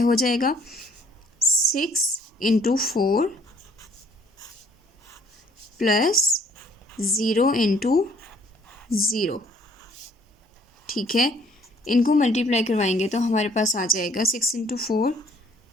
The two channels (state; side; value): normal; both; correlation 0.61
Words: जाएगा। 6 इंटू 4 प्लस 0 इंटू 0। ठीक है, इनको मल्टीप्लाई करवाएंगे तो हमारे पास आ जाएगा 6 into 4